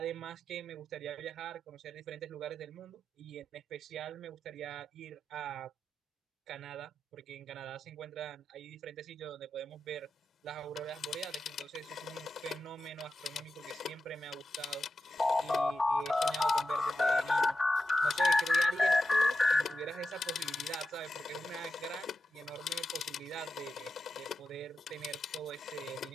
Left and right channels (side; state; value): both; normal; correlation 0.91